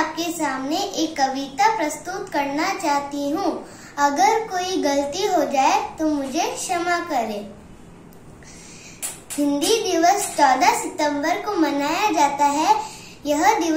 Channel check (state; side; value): identical; both; correlation 1.00